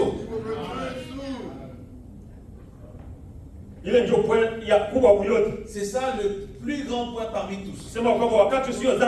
C'est ça le plus grand point parmi tous. Ça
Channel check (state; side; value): identical; both; correlation 1.00